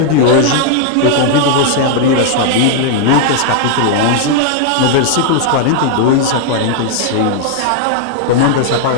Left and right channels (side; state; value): both; different; correlation 0.00